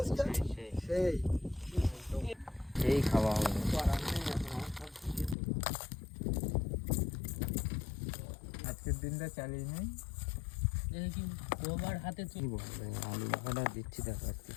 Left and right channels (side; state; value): right; drops out; at 5.4 s